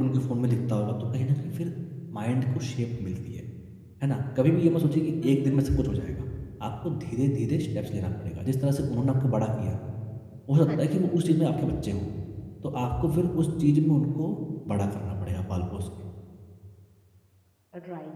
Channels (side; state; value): both; identical; correlation 1.00